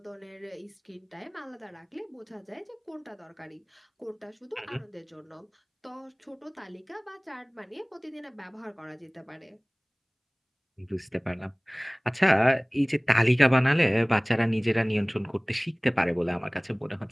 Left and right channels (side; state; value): both; identical; correlation 1.00